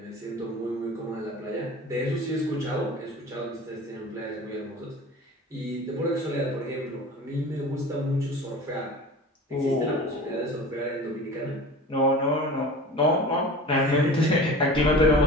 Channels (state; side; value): normal; both; correlation 0.37